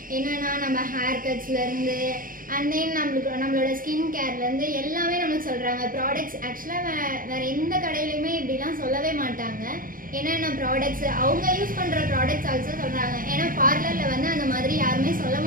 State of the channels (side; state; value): left; late; 0.40 ms